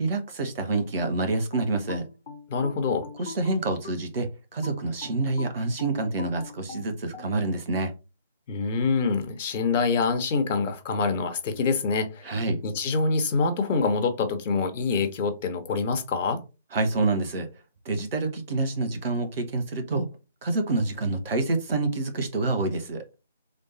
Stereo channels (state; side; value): inverted; both; correlation -0.55